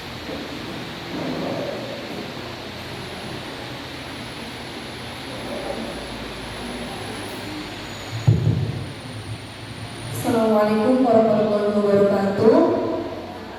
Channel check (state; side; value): identical; both; correlation 1.00